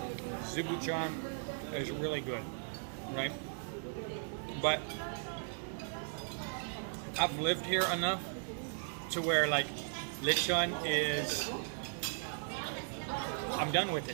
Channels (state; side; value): silent; left; 53 dB below the other